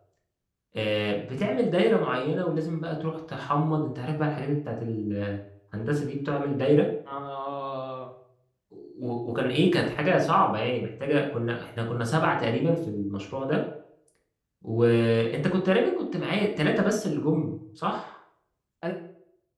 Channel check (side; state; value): both; identical; correlation 1.00